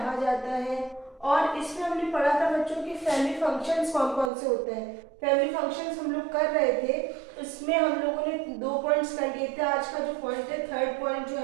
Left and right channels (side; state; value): left; drops out; at 4.3 s